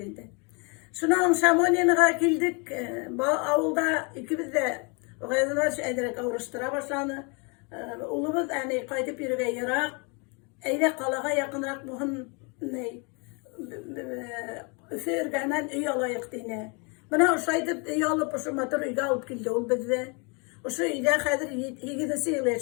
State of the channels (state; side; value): quieter; right; 33.0 dB